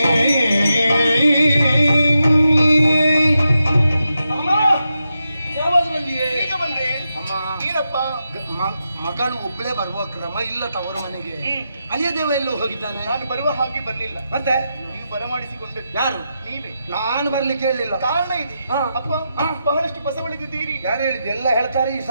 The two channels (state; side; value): inverted; both; correlation -0.87